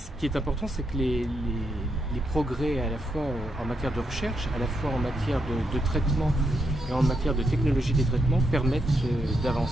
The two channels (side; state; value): both; normal; correlation 0.80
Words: qui est important, c'est que les progrès à la fois en matière de recherche, à la fois en matière de traitement et en matière de technologie des traitements permettent